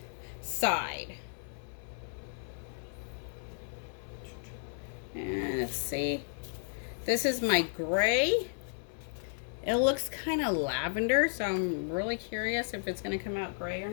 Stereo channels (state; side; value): silent; right; digital silence